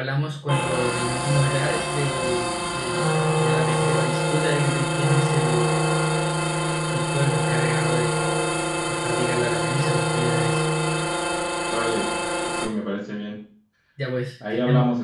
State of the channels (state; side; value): identical; both; correlation 1.00